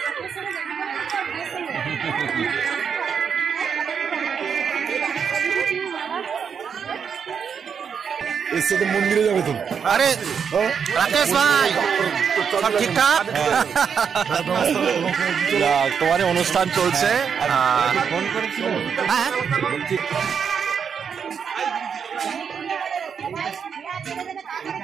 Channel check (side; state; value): left; quieter; 6.9 dB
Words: এসে তো মন্দিরে যাবে তো। আরে রাকেশ ভাই, সব ঠিকঠাক? তোমার অনুষ্ঠান চলছে। ফোন করেছিল? হ্যাঁ,